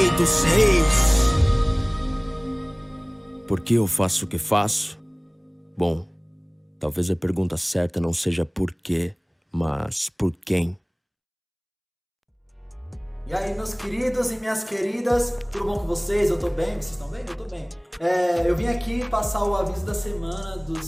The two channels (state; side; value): identical; both; correlation 1.00